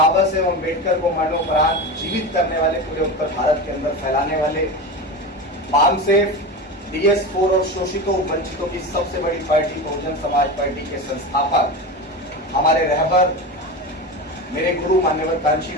साहेब अम्बेडकर को मरणोपरांत जीवित करने वाले, पूरे उत्तर भारत के अंदर फैलाने वाले, पामसेफ, DS4 और शोषितों वंचितों की सबसे बड़ी पार्टी बहुजन समाज पार्टी के संस्थापक, हमारे रहबर, मेरे गुरु मान्यवर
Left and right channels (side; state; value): both; normal; correlation 0.24